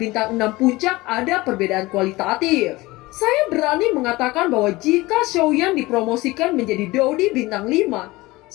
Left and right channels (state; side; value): quieter; right; 20.5 dB